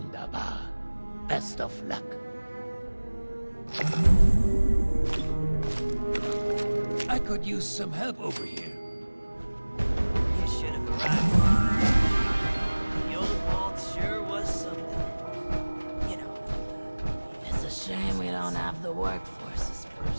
Best of luck. I could use some help over here. You should have arrived. The old vault sure was something. You know. It's a shame we don't have the workforce to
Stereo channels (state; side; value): inverted; both; correlation -1.00